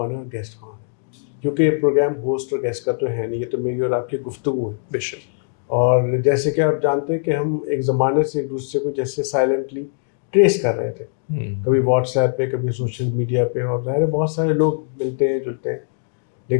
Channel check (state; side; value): silent; right; digital silence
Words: ہے اور گیسٹ کون ہے، کیونکہ یہ پروگرام ہوسٹ اور گیسٹ کا تو ہے نہیں، یہ تو میری اور آپ کی گفتگو ہے. بے شک. اور جیسے کہ آپ جانتے ہیں کہ ہم ایک زمانے سے ایک دوسرے کو جیسے سائلنٹلی ٹریس کر رہے تھے، کبھی واٹس ایپ پہ، کبھی سوشل میڈیا پہ، اور ظاہر ہے بہت سارے لوگ ملتے ہیں جلتے ہیں،